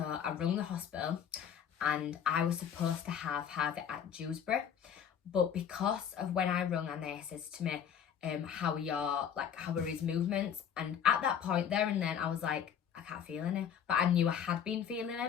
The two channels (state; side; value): quieter; right; 8.4 dB